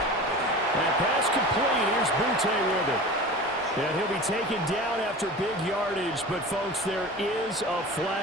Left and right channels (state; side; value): normal; both; correlation 0.35